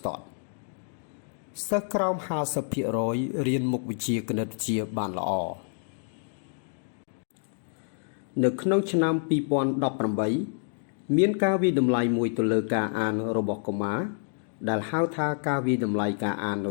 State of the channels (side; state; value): right; silent; digital silence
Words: ទាត់សិស្សក្រោម 50% រៀនមុខវិជ្ជាគណិតវិទ្យាបានល្អនៅក្នុងឆ្នាំ2018មានការវិតម្លៃមួយទៅលើការអានរបស់កុមារដែលហៅថាការវិតម្លៃការអាននៅ